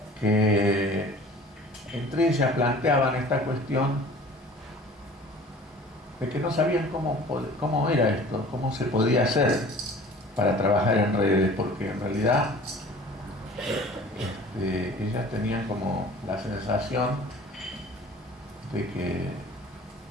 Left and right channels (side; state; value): both; normal; correlation 0.45